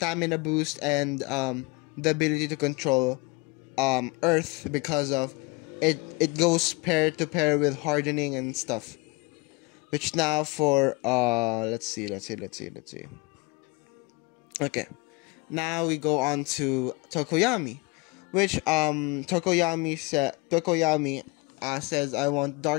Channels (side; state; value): right; quieter; 26.8 dB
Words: boost and the ability to control earth because of it goes pair to pair with hardening and stuff, which now for let's see. Okay, now we go on to Tokoyami, which Tokoyami says I want